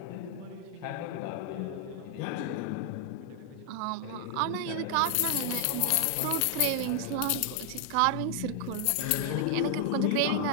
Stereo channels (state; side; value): different; both; correlation 0.00